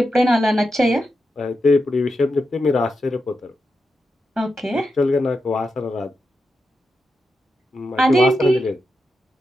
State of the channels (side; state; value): both; normal; correlation 0.88